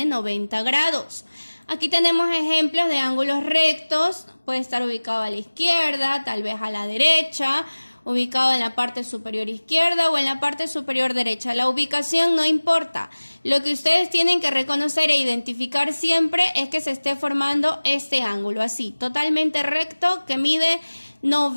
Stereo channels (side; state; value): both; inverted; correlation -1.00